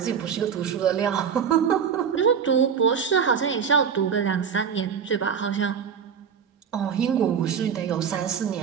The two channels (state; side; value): quieter; left; 7.2 dB